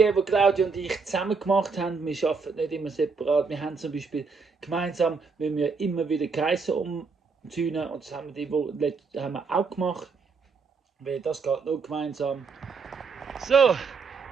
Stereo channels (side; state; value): left; quieter; 4.8 dB